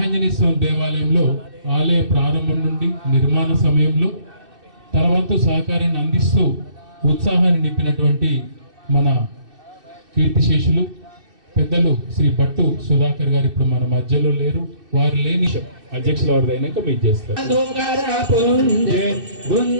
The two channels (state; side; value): late; left; 2.6 ms